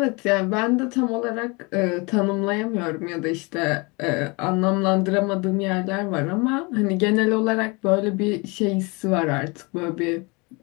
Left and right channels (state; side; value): quieter; right; 28.0 dB